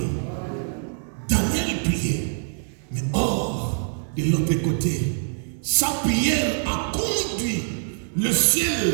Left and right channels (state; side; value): silent; left; 62 dB below the other